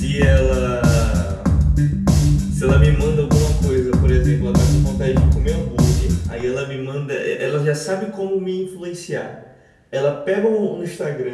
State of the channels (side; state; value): both; identical; correlation 1.00